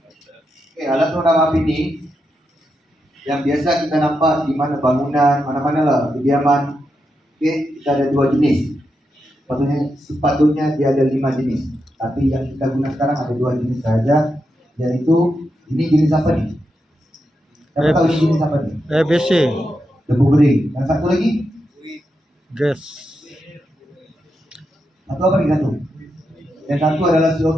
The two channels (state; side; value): normal; both; correlation 0.86